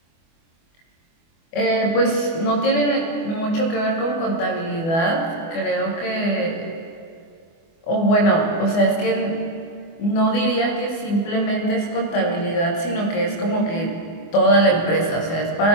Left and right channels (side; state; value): right; late; 24 ms